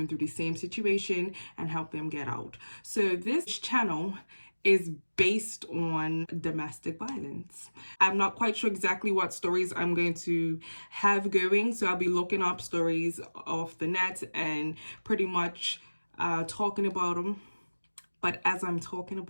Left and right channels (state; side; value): inverted; both; correlation -1.00